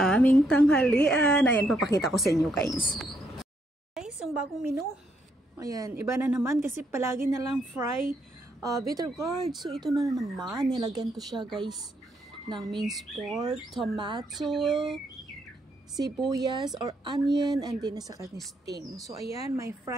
aming tanghalian. Ayan, papakita ko sa inyo, guys. Guys, yung bagong menu. Ayan, iba na naman kasi palagi na lang fry bitter gourd. So, ito na naman. Nilagyan ko siya, guys, ng minced pork, tomato, sibuyas or onion, and din saka ni sting. So, ayan, may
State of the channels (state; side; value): normal; both; correlation 0.75